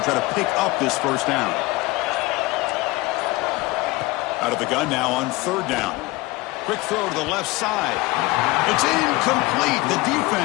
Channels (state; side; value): quieter; right; 21.4 dB